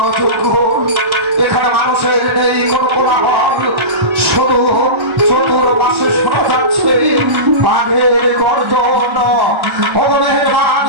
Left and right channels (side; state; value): left; late; 1.4 ms